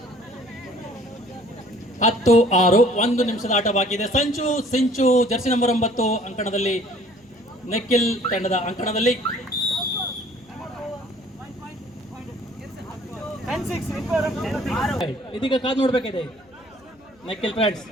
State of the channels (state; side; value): noise; left; hum, 29 dB below the sound